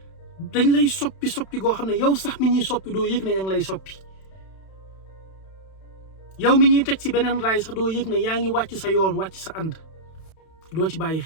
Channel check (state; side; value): late; right; 31 ms